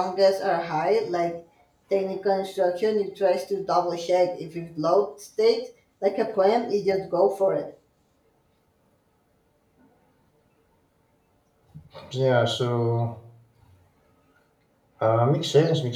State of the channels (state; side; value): identical; both; correlation 1.00